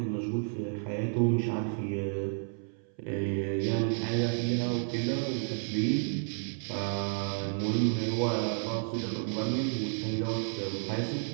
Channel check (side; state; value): left; silent; 56 dB below the other